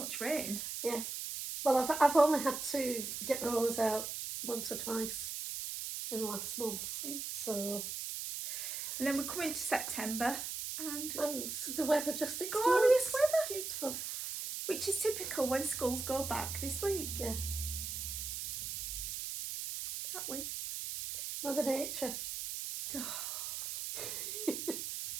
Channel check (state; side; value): noise; right; hiss, 4 dB below the sound